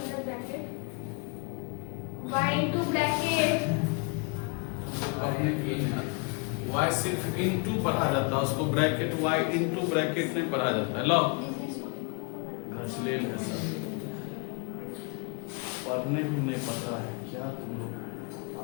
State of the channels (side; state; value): right; quieter; 33.4 dB